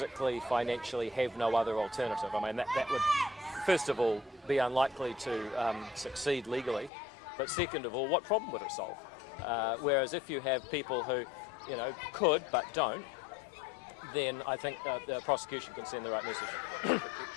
financially have no other alternative. That would, first of all, be unlikely to succeed legally, but second of all, what problem would it solve? Whereas if you have people who, could but don't, then I think the prosecution can send the right message. predictions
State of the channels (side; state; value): right; drops out; at 6.9 s